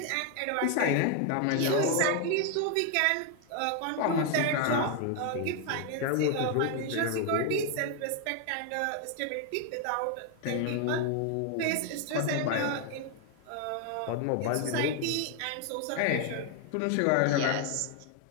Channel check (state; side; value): different; both; correlation 0.01